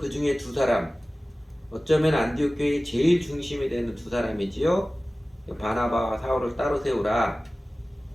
중에 2사람, 어쩌면 안디옥 교회의 제일 중심이 되는 2사람이지요. 바나바와 사울을 따로 세우라.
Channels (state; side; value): normal; both; correlation 0.97